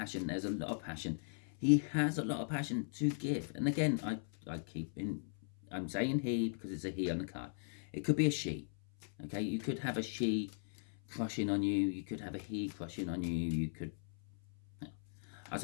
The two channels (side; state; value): right; silent; 52 dB below the other